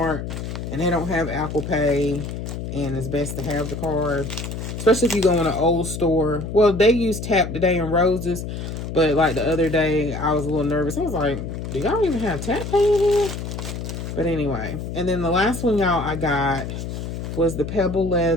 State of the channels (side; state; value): left; noise; hum, 6 dB below the sound